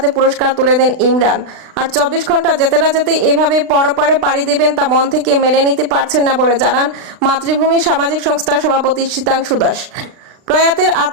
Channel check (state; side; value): late; left; 36 ms